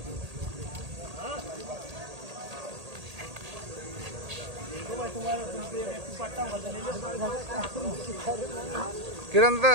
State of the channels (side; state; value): left; late; 1.8 ms